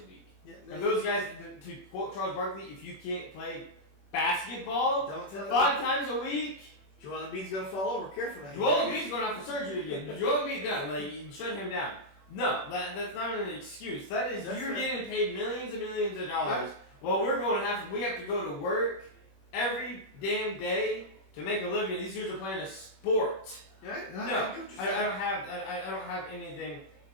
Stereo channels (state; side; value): late; right; 21 ms